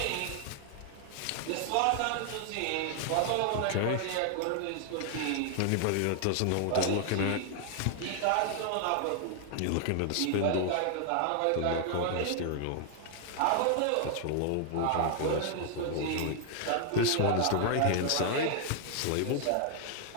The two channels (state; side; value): different; both; correlation 0.00